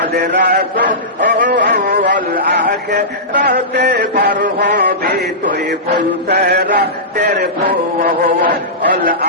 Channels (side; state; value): both; normal; correlation -0.17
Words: রাসূল আখিরাতে পার হবে তুই ফুল সিরাতের ফুল